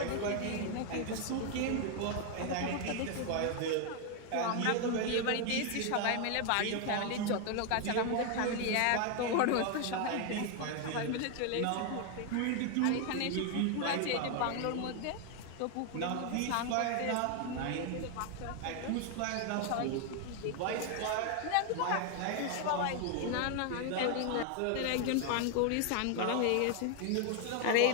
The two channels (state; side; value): different; both; correlation 0.01